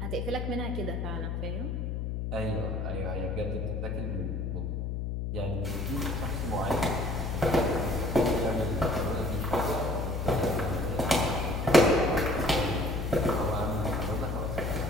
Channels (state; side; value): noise; left; hum, 2 dB below the sound